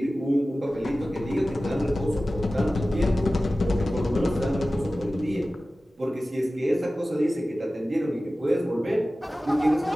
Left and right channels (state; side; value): normal; both; correlation 0.96